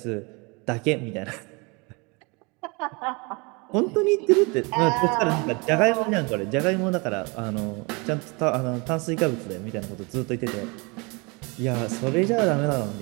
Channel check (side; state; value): left; quieter; 28.9 dB